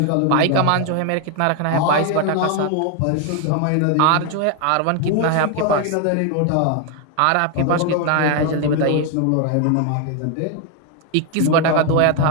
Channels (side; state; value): both; different; correlation 0.01